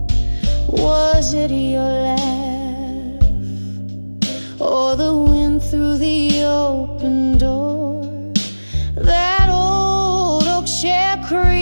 Was it your laugh, or the wind through the open door? That old oak chair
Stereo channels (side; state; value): both; inverted; correlation -1.00